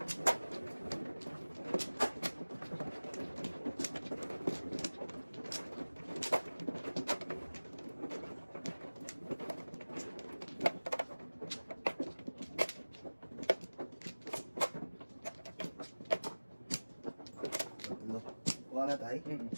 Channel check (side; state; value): both; inverted; correlation -1.00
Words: Kuha na tayo.